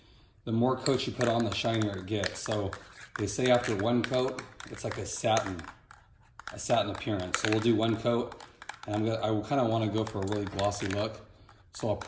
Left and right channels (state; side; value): identical; both; correlation 1.00